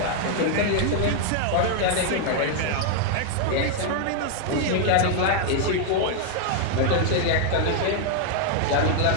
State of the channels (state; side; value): different; both; correlation 0.00